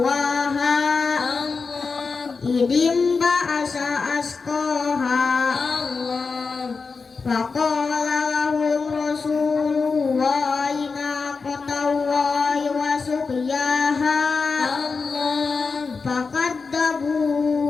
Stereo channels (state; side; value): quieter; right; 4.7 dB